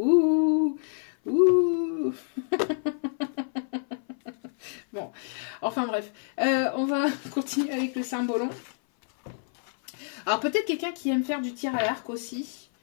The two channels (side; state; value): right; silent; 56 dB below the other